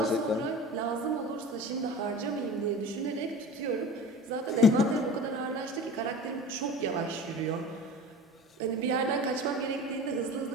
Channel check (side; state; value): both; normal; correlation 0.36